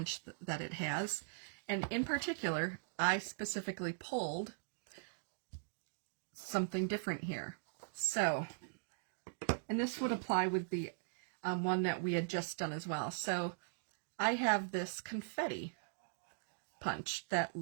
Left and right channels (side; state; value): left; silent; digital silence